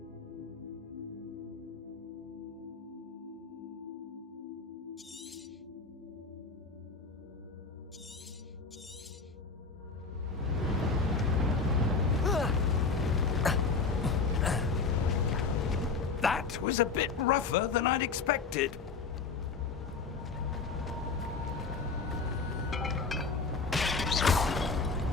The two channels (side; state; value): right; quieter; 4.6 dB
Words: That was a bit rougher than I'd expected.